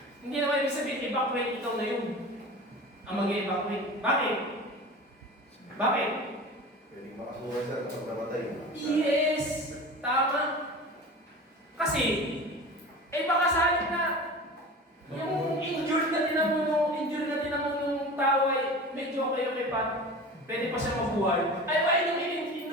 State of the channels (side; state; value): both; normal; correlation 0.35